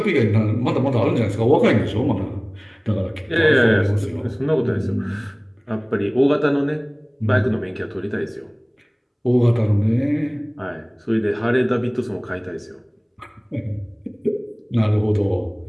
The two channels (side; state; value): both; identical; correlation 1.00